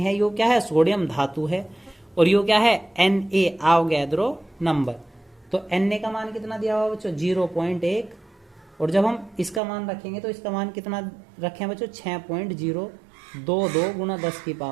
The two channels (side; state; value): left; drops out; at 9.6 s